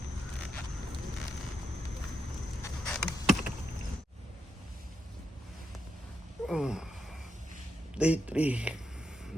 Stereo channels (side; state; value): both; normal; correlation 0.83